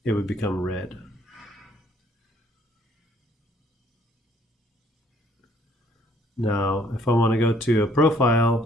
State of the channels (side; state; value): both; normal; correlation 0.63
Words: it would become red. Now, if I want to go to a